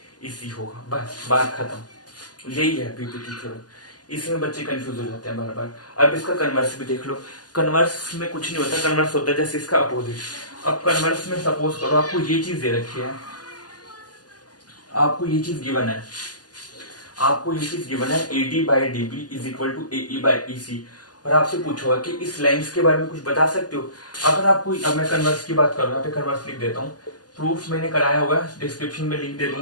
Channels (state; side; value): late; right; 0.69 ms